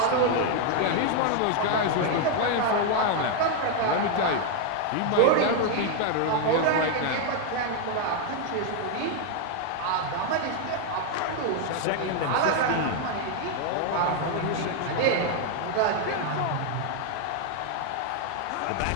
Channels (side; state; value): both; different; correlation 0.00